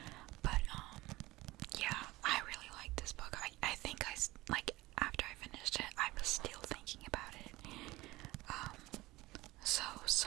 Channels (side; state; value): left; quieter; 19.2 dB